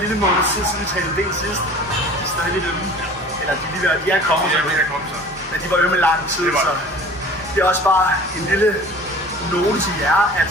lille måned siden vi trænede ben sidst, de er stadig lidt ømme. Eller de er kommet så. Men de var ømme lang tid, så det er også bare en lille note til jer, at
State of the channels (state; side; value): normal; both; correlation 0.44